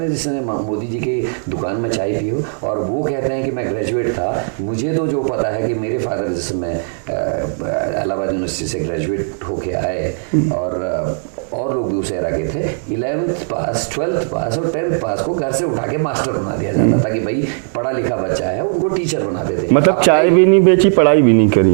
जिसने मोदी जी की दुकान में चाय पी हो, और वो कहते हैं कि मैं ग्रेजुएट था। मुझे तो जो पता है कि मेरे फादर जैसे मैं इलाहाबाद यूनिवर्सिटी से ग्रेजुएट होके आए, और लोग भी उस एरा के थे, 11th पास, 12th पास और 10th पास को घर से उठा के मास्टर बना दिया जाता था कि भाई पढ़ा लिखा बच्चा है, उनको टीचर बनाते थे। मतलब चाय भी नहीं बेची, पढ़ाई भी नहीं करी।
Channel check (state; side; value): silent; left; digital silence